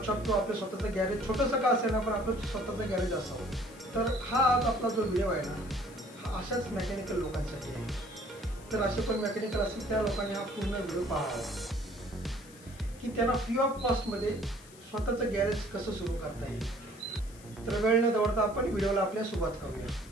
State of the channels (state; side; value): noise; left; hiss, 22 dB below the sound